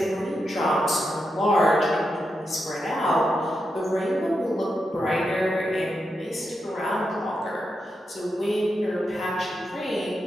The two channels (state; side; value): normal; both; correlation 0.86